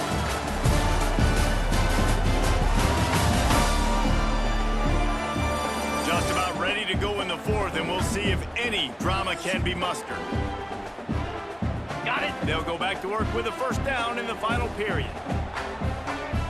Just about ready to go in the fourth, and we'll see if any drama can be mustered. Got it. They'll go back to work with a first down in the final period.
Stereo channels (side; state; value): both; identical; correlation 1.00